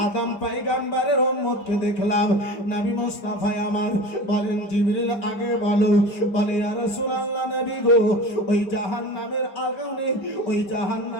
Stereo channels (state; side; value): late; right; 5.2 ms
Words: আদম পয়গম্বরের উম্মতকে দেখলাম। নবী মুস্তাফা আমার বলেন জিবরিল আগে বলো, বলে ইয়া রাসূলুল্লাহ নবী গো ওই জাহান্নামের আগুনে ওই